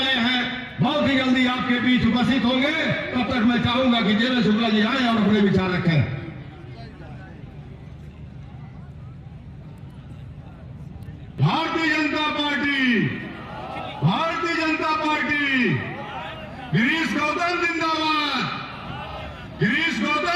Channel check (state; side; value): identical; both; correlation 1.00